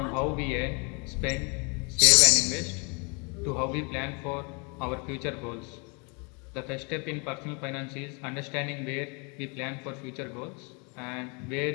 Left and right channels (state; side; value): quieter; right; 32.9 dB